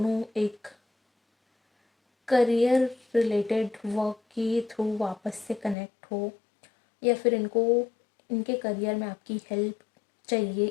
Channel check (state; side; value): drops out; right; at 5.8 s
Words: एक करियर रिलेटेड वर्क के थ्रू वापस से कनेक्ट हो, या फिर इनको इनके करियर में आपकी हेल्प चाहिए